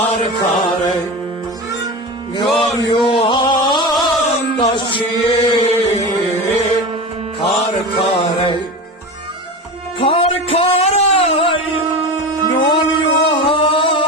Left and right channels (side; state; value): both; normal; correlation 0.26